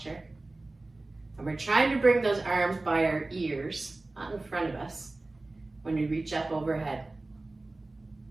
And we're trying to bring those arms by our ears, not in front of us, when we reach up overhead.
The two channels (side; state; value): left; quieter; 3.0 dB